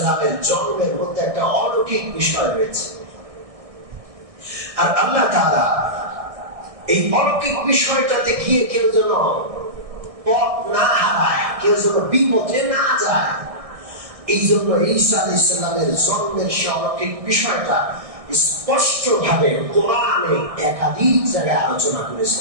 জন্মের মধ্যে একটা অলৌকিক বিষয় রয়েছে, আর আল্লাহ তাআলা এই অলৌকিক বিষয়টাতে গিয়ে কেউ যেন পথ না হারায়, কেউ যেন বিপথে না যায়, এই জন্য ঈসা আলাইহিস সালামের জন্মের সে অলৌকিক বিষয়টা স্পষ্ট ভাবে কোরআনে একাধিক জায়গায় আলোচনা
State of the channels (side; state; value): left; late; 1.6 ms